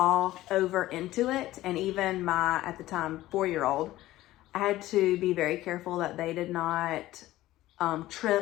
over into it. And even my, at the time, 4-year-old, I had to be very careful that they did not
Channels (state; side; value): quieter; right; 15.9 dB